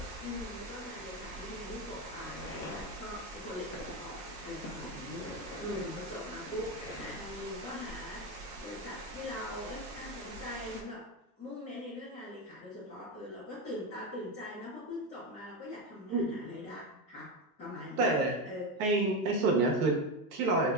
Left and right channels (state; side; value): normal; both; correlation 0.14